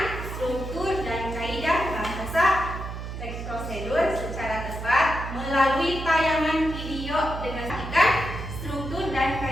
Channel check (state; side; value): noise; right; hum, 7 dB below the sound